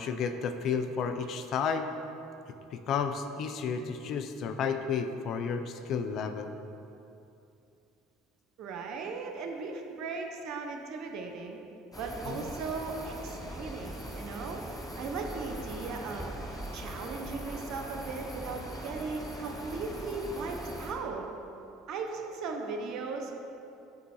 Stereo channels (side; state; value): both; normal; correlation 0.48